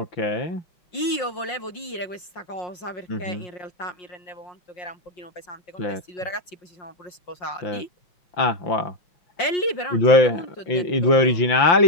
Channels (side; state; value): right; late; 5.6 ms